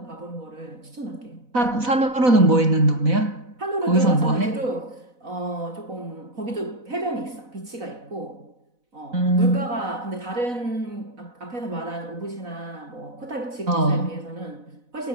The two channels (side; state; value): left; late; 4.0 ms